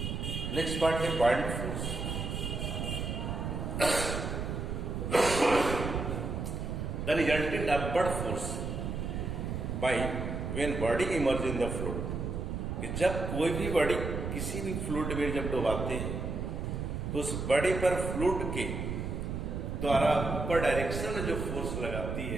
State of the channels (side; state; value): right; noise; rumble, 3 dB below the sound